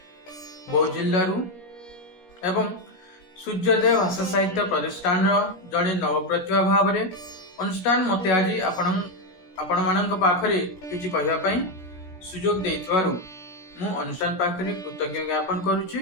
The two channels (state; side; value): late; right; 17 ms